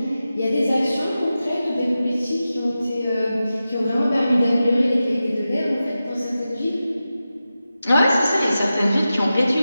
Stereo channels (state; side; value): inverted; both; correlation -0.93